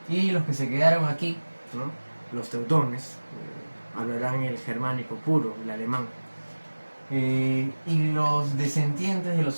Y los que se quedaron aquí, ¿no?, los teutones, hablarán el germánico puro, el alemán. Y los descendientes de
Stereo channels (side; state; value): both; inverted; correlation -1.00